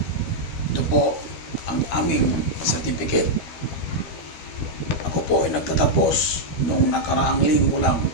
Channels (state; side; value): late; right; 13 ms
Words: Ito po ang aming certificate. Ako po ay nagtatapos noong nakaraang linggo lang,